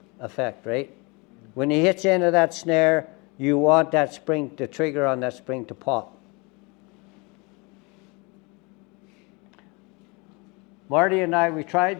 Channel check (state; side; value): quieter; right; 28.4 dB